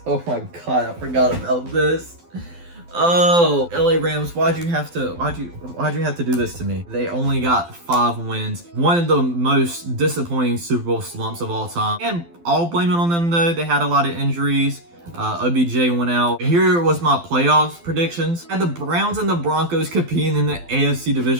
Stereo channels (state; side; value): late; left; 12 ms